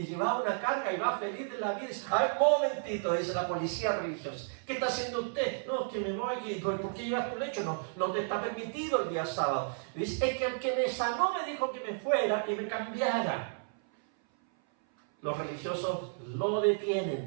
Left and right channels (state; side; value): silent; left; 56 dB below the other